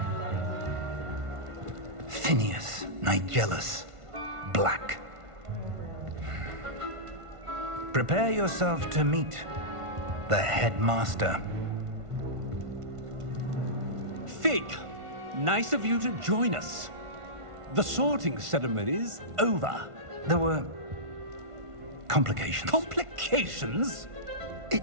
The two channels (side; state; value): left; late; 1.5 ms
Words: Phineas, Nigellus, Black. Prepare yourself to meet the headmaster. Fig, nice of you to join us. The sorting ceremony's over. There were complications. Complications?